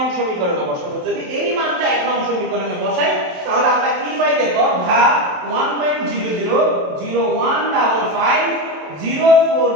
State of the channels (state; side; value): late; left; 27 ms